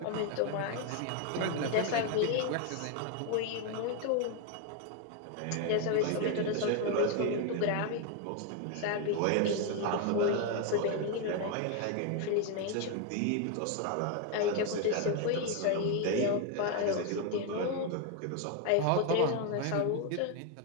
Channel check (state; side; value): different; both; correlation 0.01